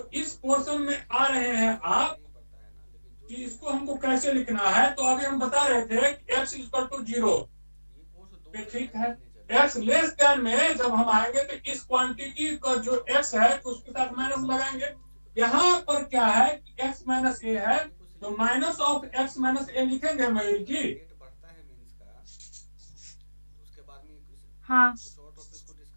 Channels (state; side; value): inverted; both; correlation -1.00